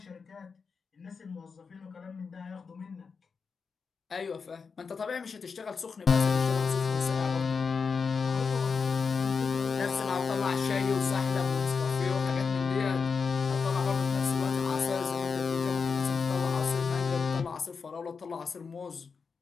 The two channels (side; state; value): right; quieter; 5.3 dB